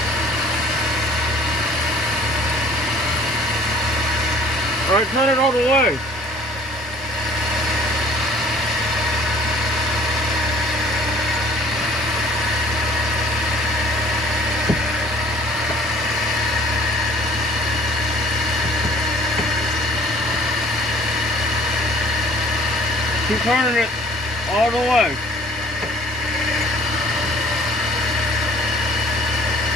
All right, turn it all the way. Keep turning it all the way.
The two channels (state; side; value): normal; both; correlation 0.54